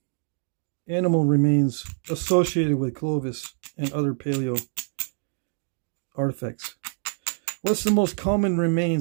animal remains associated with Clovis and other paleo artifacts? What's the most common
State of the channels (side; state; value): left; silent; digital silence